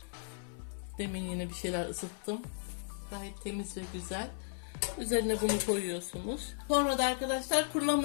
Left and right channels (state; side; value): silent; right; 54 dB below the other